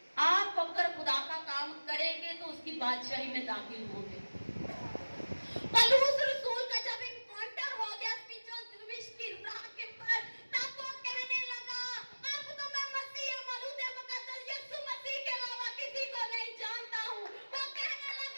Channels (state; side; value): inverted; both; correlation -1.00